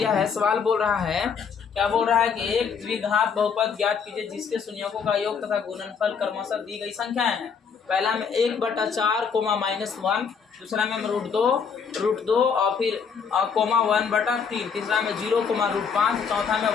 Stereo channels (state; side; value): quieter; right; 6.3 dB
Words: है, सवाल बोल रहा है, क्या बोल रहा है कि एक द्विघात बहुपद ज्ञात कीजिए जिसके शून्यकों का योग तथा गुणनफल क्रमशः दी गई संख्याएं हैं। पहला में 1/4 -1, दूसरा में हम √2 और फिर कोमा 1/3, तीसरा में 0, चौथा में